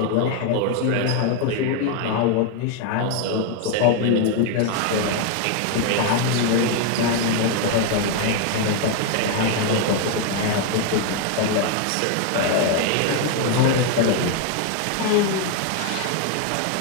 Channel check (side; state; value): both; different; correlation 0.01